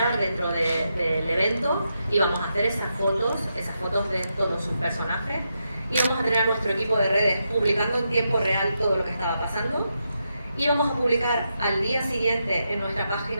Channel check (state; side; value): inverted; both; correlation -0.84